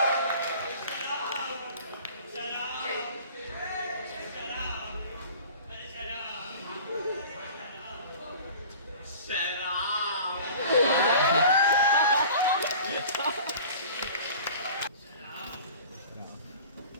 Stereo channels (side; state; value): both; inverted; correlation -0.43